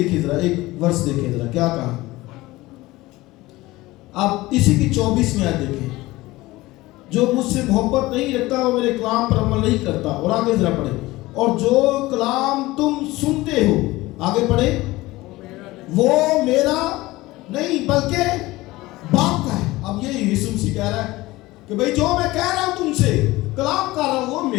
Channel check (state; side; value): quieter; right; 19.2 dB